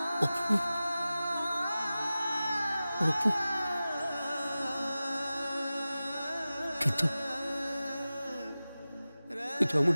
অপূর্ব, অপূর্ব। কিন্তু কিন্তু আমার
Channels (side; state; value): both; inverted; correlation -0.96